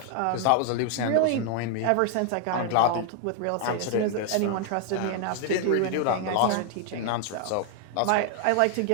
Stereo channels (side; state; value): both; different; correlation 0.00